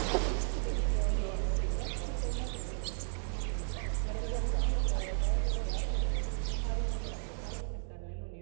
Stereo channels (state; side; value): silent; left; 55 dB below the other